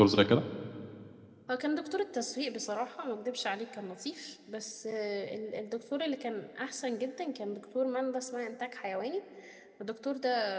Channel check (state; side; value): identical; both; correlation 1.00